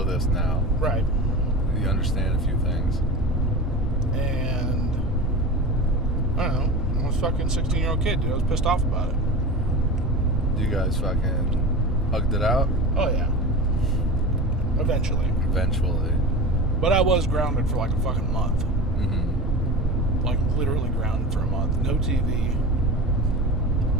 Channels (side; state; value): both; normal; correlation 0.30